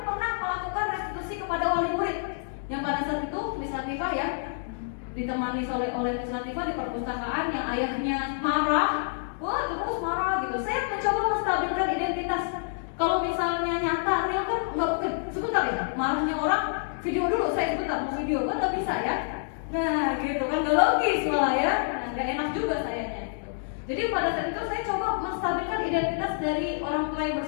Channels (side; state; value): right; silent; digital silence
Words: pernah melakukan restitusi kepada wali murid. Yang pada saat itu Miss Latifah ya, ditemani oleh Miss Latifah di perpustakaan yang ayahnya marah, wah terus marah gitu. Saya mencoba menstabilkan identitas. Kalau misalnya nyata real kan nggak mungkin. Sebentar ya, marahnya orang video dulu, saya sebentar mau video kan nggak bisa ya. Nah gitu kan, nggak logis malah ya, nggak enak juga sayanya gitu. Jadi pada saat itu saya coba menstabilkan identitas dari orang tua yang